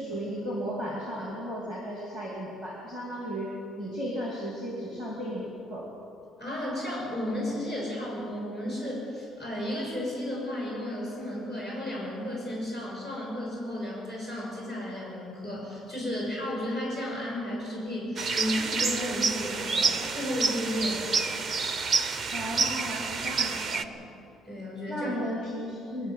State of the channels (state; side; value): normal; both; correlation 0.71